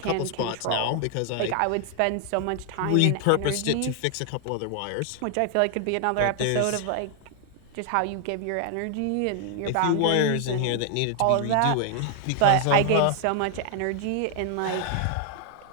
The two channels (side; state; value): both; different; correlation 0.00